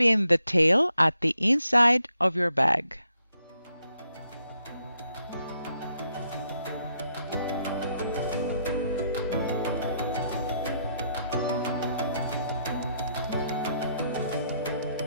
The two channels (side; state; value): both; inverted; correlation -0.76